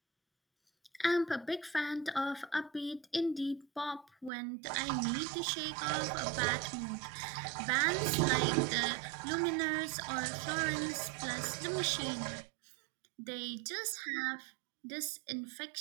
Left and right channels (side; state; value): left; drops out; at 4.3 s